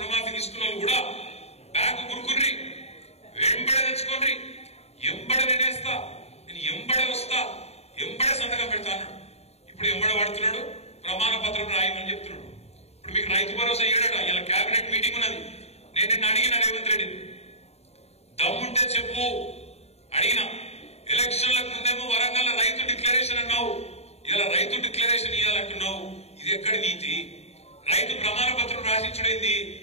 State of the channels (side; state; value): right; late; 0.30 ms